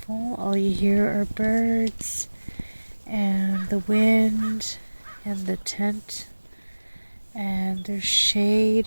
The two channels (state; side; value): inverted; both; correlation -1.00